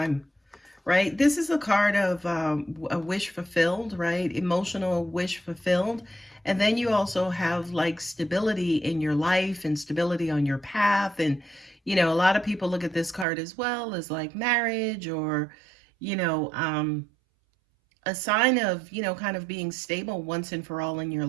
right? This is a card of a wish fulfilled, right? Emotional wish fulfilled. And then you also have like stability in your life and stability on your path. And, a lot of people look at this card as well as like marriage or, a sign of, kind of being stable once and for all in your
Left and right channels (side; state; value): left; drops out; at 13.2 s